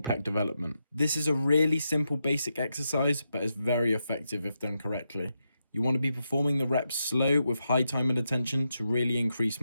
pec development. This is a really simple basic exercise, but it's very effective if done correctly. You want to be performing the reps slow with high time and attention to really increase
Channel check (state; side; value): inverted; both; correlation -0.85